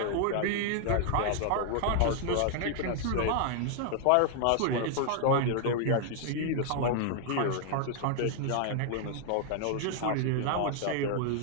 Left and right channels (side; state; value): both; different; correlation 0.00